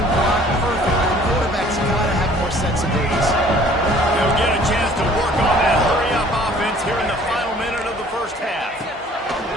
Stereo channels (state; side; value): normal; both; correlation 0.54